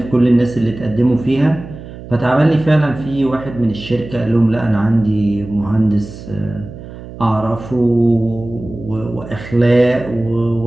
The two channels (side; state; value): right; noise; hum, 14 dB below the sound